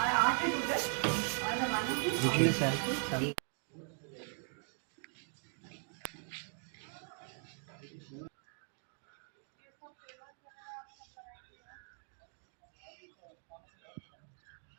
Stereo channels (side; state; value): left; silent; 51 dB below the other